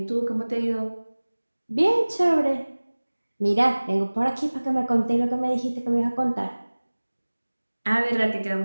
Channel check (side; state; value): both; inverted; correlation -1.00